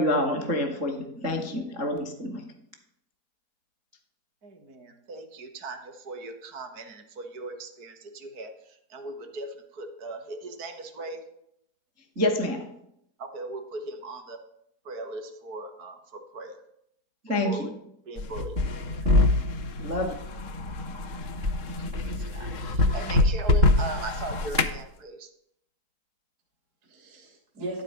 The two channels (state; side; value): late; left; 3.7 ms